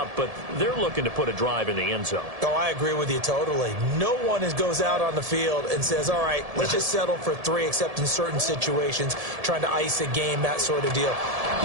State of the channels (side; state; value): left; late; 1.7 ms